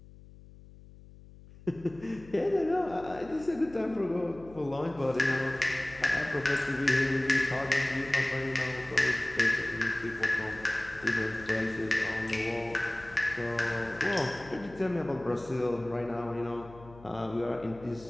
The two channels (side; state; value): left; noise; hum, 20 dB below the sound